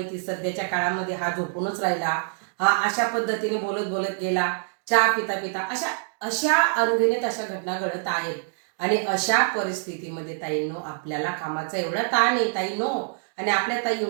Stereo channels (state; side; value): silent; left; digital silence